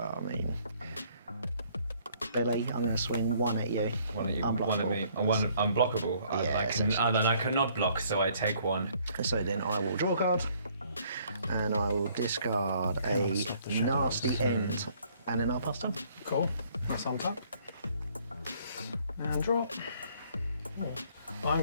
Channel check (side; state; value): both; inverted; correlation -0.63